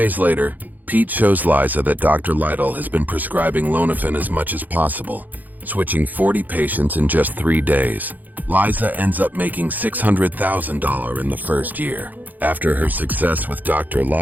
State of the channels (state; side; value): late; left; 0.083 ms